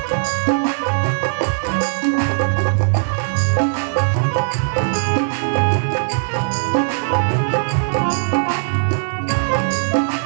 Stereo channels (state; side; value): silent; left; digital silence